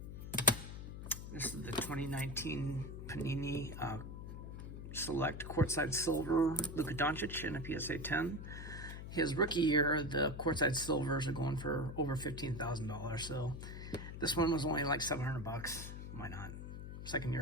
This is the 2019 Panini Select Courtside Silver Luka Doncic in a PSA 10. His rookie year, the Courtside Silvers are going for over $15,000. So this one was only like $700. Why not? Second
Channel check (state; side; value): noise; left; hum, 9 dB below the sound